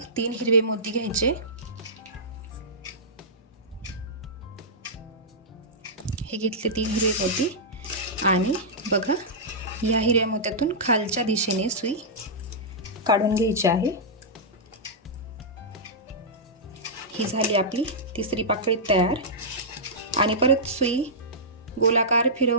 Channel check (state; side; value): normal; both; correlation -0.13